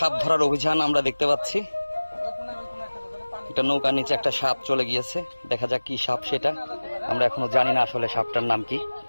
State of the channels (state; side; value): inverted; both; correlation -1.00